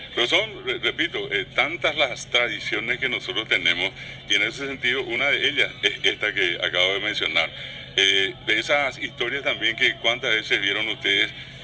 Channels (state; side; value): identical; both; correlation 1.00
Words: Pero son, repito, tantas las tradiciones que nosotros tenemos, y en ese sentido una de ellas es esta que acabo de mencionar. De esas historias también que cuántas veces vieron ustedes,